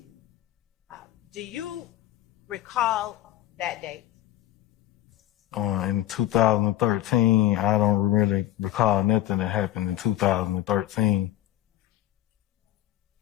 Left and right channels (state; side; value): quieter; right; 14.4 dB